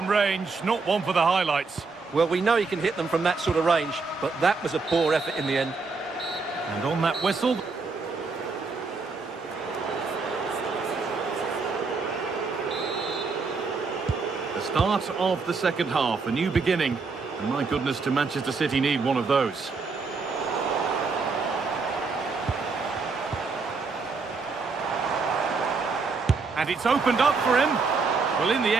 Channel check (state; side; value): quieter; left; 4.4 dB